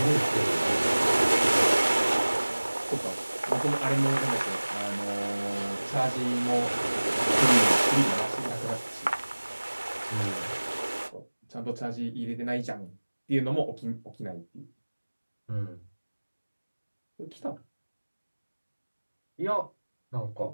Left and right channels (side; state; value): both; inverted; correlation -1.00